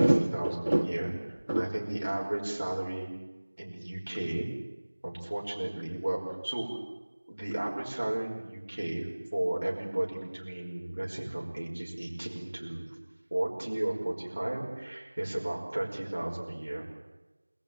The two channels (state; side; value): inverted; both; correlation -1.00